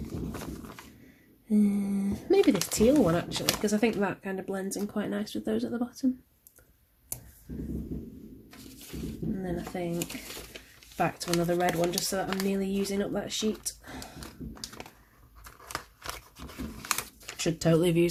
Maybe this teal one actually, because I think that kind of blends in quite nice with those at the bottom. And then I think back to another red one, just so that I'm nearly using up that sheet. Should totally have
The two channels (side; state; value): both; identical; correlation 1.00